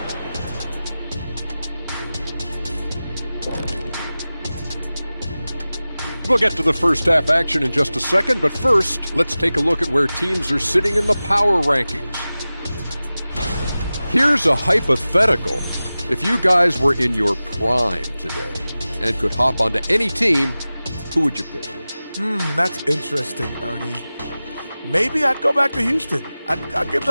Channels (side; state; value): both; inverted; correlation -0.96